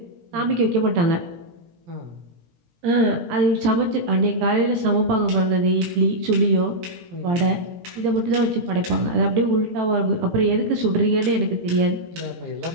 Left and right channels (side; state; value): left; late; 17 ms